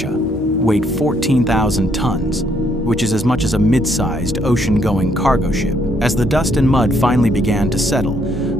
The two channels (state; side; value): normal; both; correlation 0.70